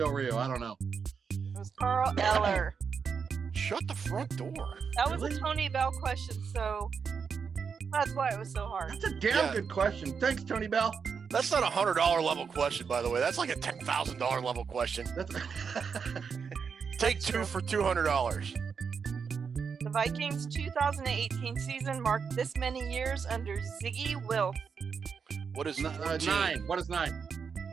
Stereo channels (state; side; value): quieter; left; 6.1 dB